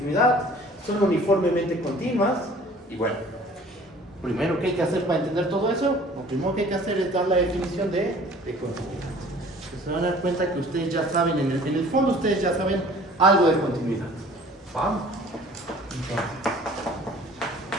son uniformemente continuas, y bueno, primero, ¿qué hay que hacer para entender todo eso? Lo primero que hay que hacer es dar la definición de continuidad. Se van a dar cuenta que ustedes ya saben, en el fondo ustedes ya saben algo de continuidad. ¿Vamos? Entonces,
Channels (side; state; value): both; normal; correlation 0.50